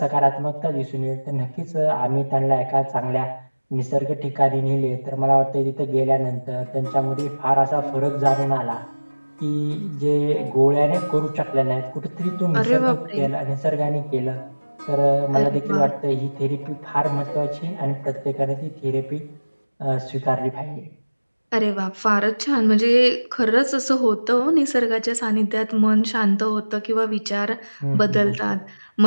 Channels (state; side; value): inverted; both; correlation -1.00